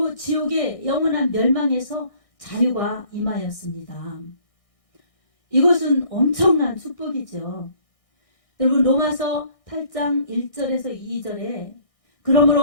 지옥의 영원한 멸망에서 자유가 임하였습니다. 이것은 엄청난 축복이죠. 여러분 로마서 8장 1절에서 2절에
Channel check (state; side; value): late; right; 1.6 ms